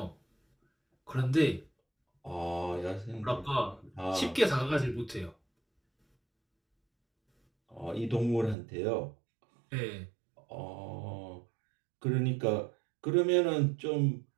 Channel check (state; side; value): drops out; left; at 8.6 s